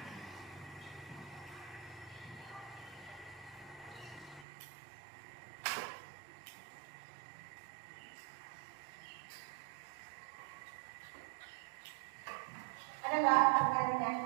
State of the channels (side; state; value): left; drops out; at 4.5 s